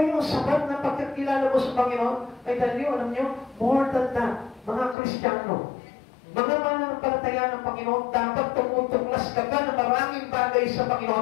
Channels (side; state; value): right; drops out; at 5.0 s